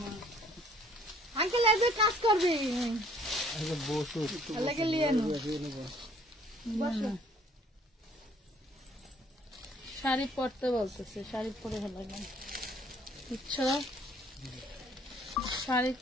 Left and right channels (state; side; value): normal; both; correlation 0.59